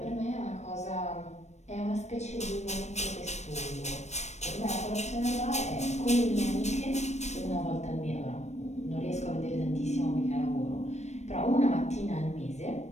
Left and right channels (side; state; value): right; late; 0.33 ms